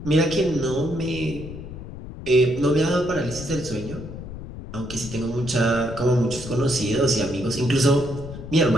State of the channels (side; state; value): left; noise; rumble, 11 dB below the sound